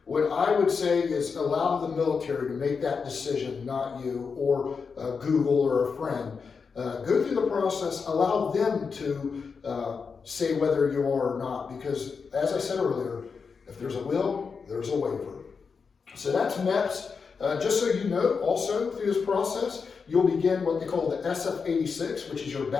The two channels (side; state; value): right; quieter; 5.4 dB